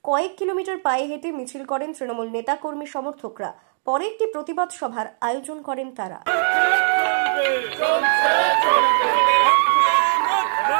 কয়েক কিলোমিটার পায়ে হেঁটে মিছিল করেন তৃণমূল নেতা কর্মী সমর্থকরা। পরে একটি প্রতিবাদ সভার আয়োজন করেন তারা।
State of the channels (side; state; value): left; silent; digital silence